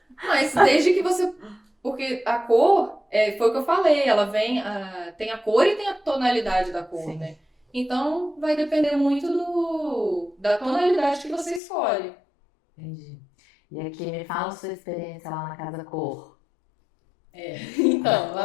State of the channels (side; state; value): right; drops out; at 11.6 s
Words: Mas desde que você. Porque a cor, foi o que eu falei, ela tem a cor e tem a tonalidade da cor, Sim, né? Então vai depender muito da tonalidade que você escolhe. entendi. E aqui, me fala a sua experiência lá na Casa Cor. Então,